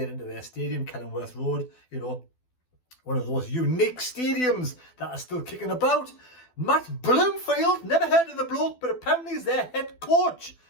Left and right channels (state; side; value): late; right; 12 ms